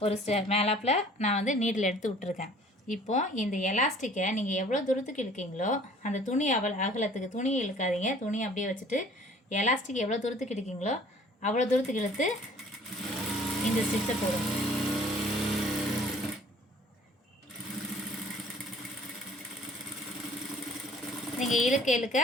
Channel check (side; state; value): both; normal; correlation 0.52